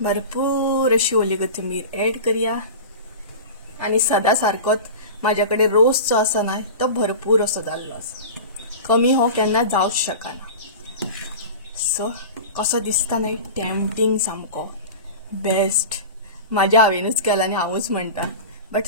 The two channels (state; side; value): inverted; both; correlation -0.32